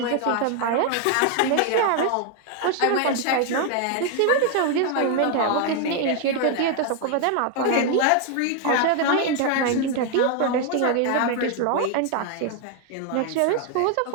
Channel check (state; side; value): different; both; correlation 0.01